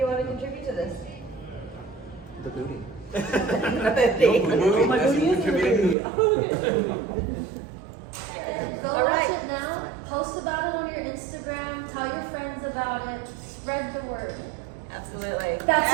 want to contribute to this? The booty. Go All watch right. it now, post about it on your Instagram, tell your friends about it, spread the word. Absolutely. That's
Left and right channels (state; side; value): drops out; left; at 6.0 s